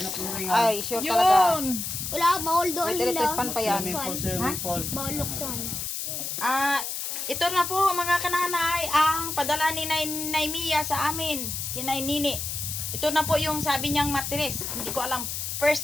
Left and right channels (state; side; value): noise; left; hiss, 4 dB below the sound